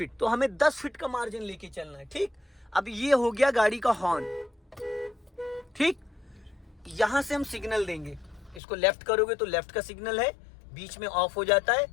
तो हमें 10 फीट का मार्जिन लेके चलना है, ठीक। अब ये हो गया गाड़ी का हॉर्न, ठीक। यहां से हम सिग्नल देंगे, इसको लेफ्ट करोगे तो लेफ्ट का सिग्नल है, बीच में ऑफ हो जाता है,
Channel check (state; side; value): drops out; right; at 8.6 s